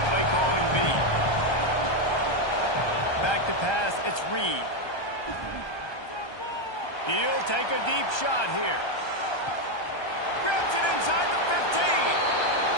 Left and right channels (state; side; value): late; right; 1.2 ms